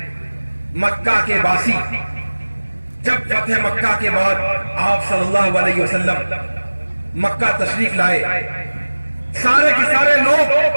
مکہ کے باسی جب فتح مکہ کے بعد آپ صلی اللہ علیہ وسلم مکہ تشریف لائے، سارے کے سارے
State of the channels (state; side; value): inverted; both; correlation -1.00